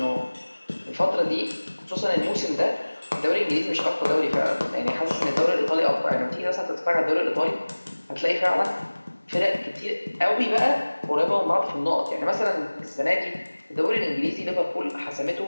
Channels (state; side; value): inverted; both; correlation -1.00